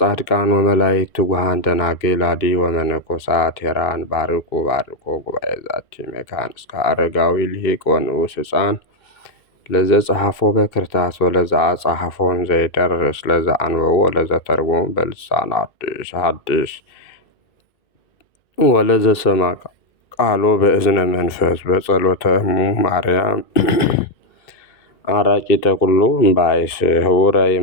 ወመላእክት ትጉሃን ደናግል አዲ ወመነኮሳት ሄራን ባርኩ ባርኮ ጉባኤ ዛቲ መካን እስከ አረጋዊ ልሂቅ ወንዑስ ሕፃን ለዘ ጸሐፎ በክርታስ ወለዘ አጻሐፎን ዘይደርስ ለዘ አንበቦ ወለዘ ተርጎሙ በልሳን ሐዲስ ወለዘ ሰማ ቃሎ በእዝነ መንፈስ በጸሎተ እሙ ማርያም አራቂተ ኩሉ እምባይስ ህቡረ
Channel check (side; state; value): right; late; 2.6 ms